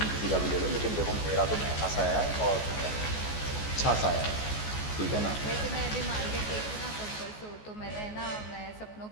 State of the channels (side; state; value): right; late; 14 ms